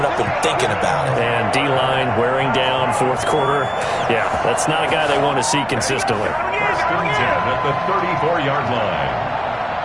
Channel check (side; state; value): both; identical; correlation 1.00